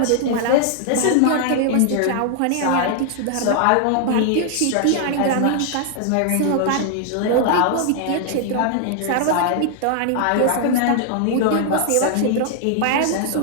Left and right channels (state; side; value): different; both; correlation 0.00